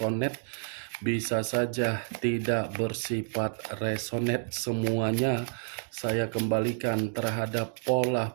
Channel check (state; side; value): silent; left; digital silence